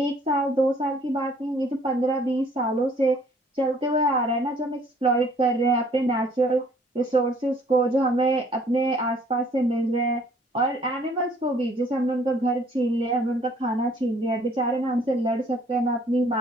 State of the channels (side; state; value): both; normal; correlation 0.59